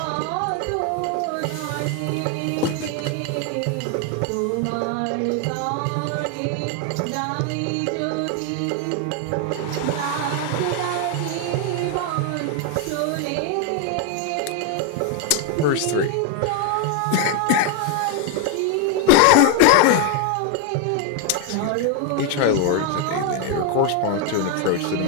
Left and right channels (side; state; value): both; different; correlation 0.01